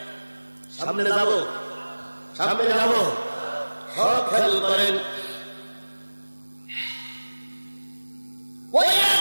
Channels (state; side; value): inverted; both; correlation -1.00